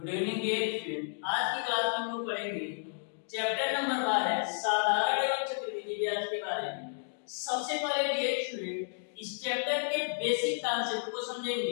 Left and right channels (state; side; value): silent; right; digital silence